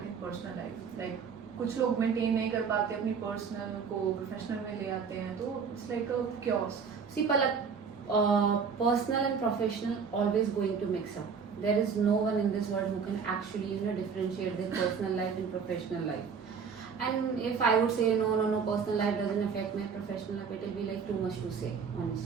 and personal life? Like कुछ लोग maintain नहीं कर पाते, अपनी personal को professional में ले आते हैं, तो it's like a chaos. See, Palak, personal and professional always going to mix up. There is no one in this world who can actually differentiate their personal life and professional life. And if I would say no, personal life doesn't affect my professional life, it will be like too much to say,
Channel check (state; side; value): quieter; left; 6.1 dB